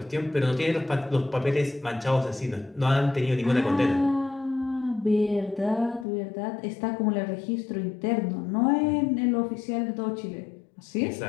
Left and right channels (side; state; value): right; drops out; at 6.1 s